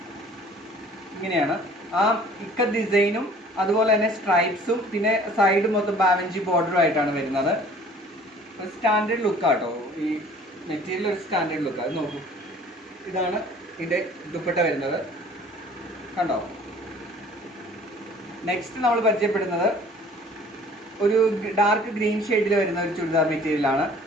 ഇങ്ങനെയാണ്. ആ ഇക്കത്ത് ഡിസൈനും അതുപോലെ തന്നെ സ്ട്രൈപ്സും പിന്നെ സൈഡ് മൊത്തം ബാവഞ്ചി ബോർഡറും ആയിട്ടാണ് വരുന്നത്. ഒരു സ്റ്റാൻഡേർഡ് ലുക്കാട്ടോ ഈ മെറ്റീരിയൽ, ഒരു സ്റ്റാൻഡേർഡ് ലുക്ക്. അത് നോക്കൂ, ഇതാണ് ഇതിന്റെ ദുപ്പട്ട വരുന്നത്, കണ്ടോ. നെക്സ്റ്റ് നമ്മൾ പരിചയപ്പെടുന്നത് ഒരു ഡാർക്ക് ഗ്രീൻ ഷെയ്ഡിൽ വരുന്ന ഒരു ചുരിദാർ മെറ്റീരിയലാണ്.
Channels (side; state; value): both; normal; correlation 0.51